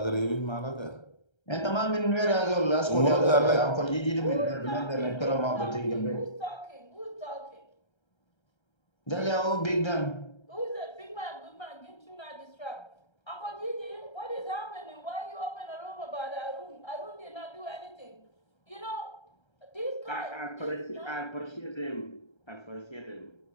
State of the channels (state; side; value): late; right; 1.3 ms